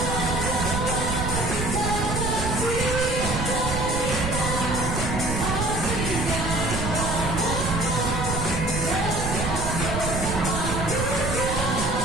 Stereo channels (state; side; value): noise; right; rumble, 2 dB below the sound